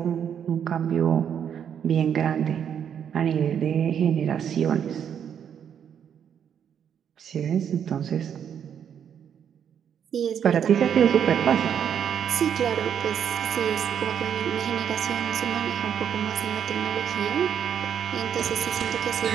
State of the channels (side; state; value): left; quieter; 8.5 dB